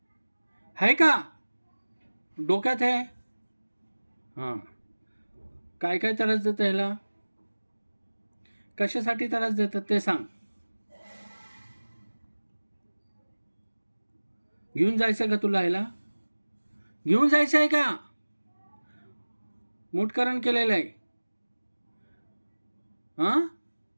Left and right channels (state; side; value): inverted; both; correlation -1.00